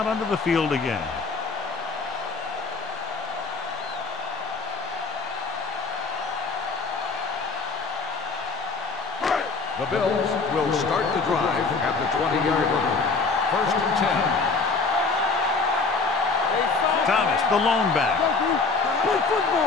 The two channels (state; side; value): quieter; right; 4.2 dB